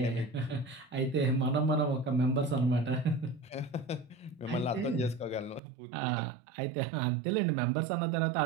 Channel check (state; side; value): drops out; left; at 5.6 s